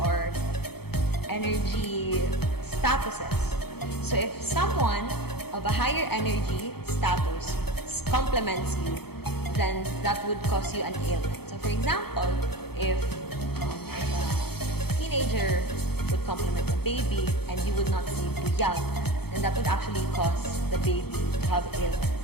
or energy statuses. So if someone of a higher energy status complements you, then that would cause you an ailment. So for example, if a teenager would complement a baby and you would not see buyag, then that would actually cause the baby to have ailments.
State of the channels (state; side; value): late; right; 0.96 ms